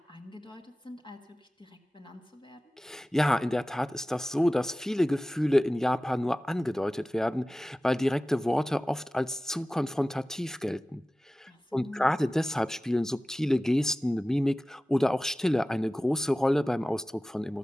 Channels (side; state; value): both; normal; correlation 0.96